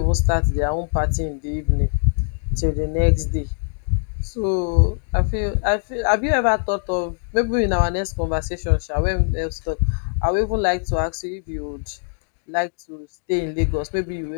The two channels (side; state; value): right; silent; digital silence